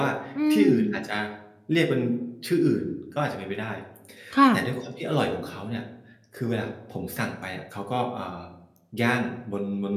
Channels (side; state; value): both; identical; correlation 1.00